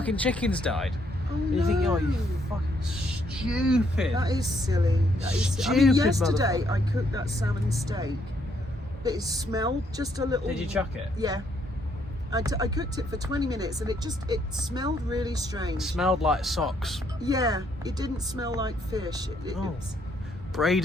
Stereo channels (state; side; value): normal; both; correlation 0.71